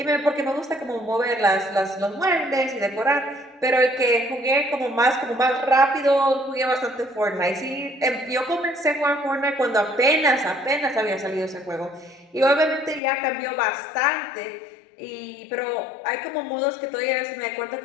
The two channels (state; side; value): drops out; right; at 13.0 s